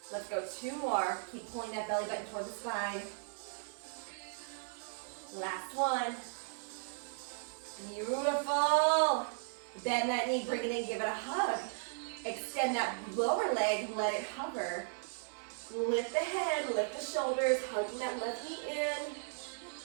Let's go two more. Keep pulling that belly button toward the spine. Last one. Beautiful. Bend that knee, bring it in, give it a hug. Extend that lower leg, let it hover. Lift the head, lift the shoulders, hugging that left knee in.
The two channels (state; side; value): silent; left; 53 dB below the other